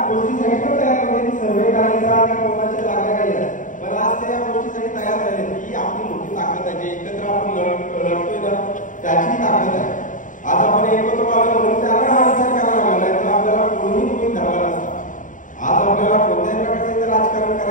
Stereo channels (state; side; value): late; right; 0.38 ms